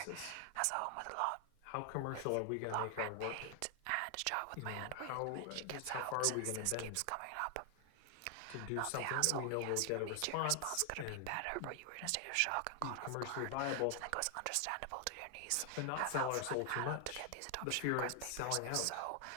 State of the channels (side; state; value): both; different; correlation 0.00